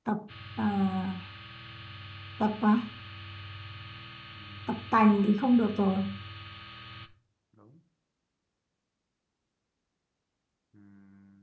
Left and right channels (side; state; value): both; identical; correlation 1.00